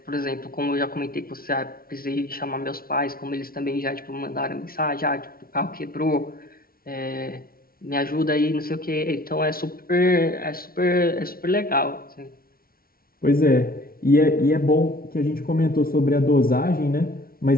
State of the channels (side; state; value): right; late; 0.43 ms